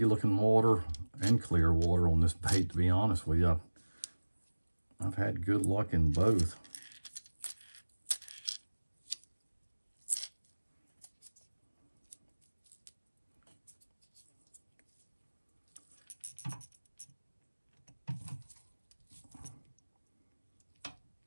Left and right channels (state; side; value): inverted; both; correlation -1.00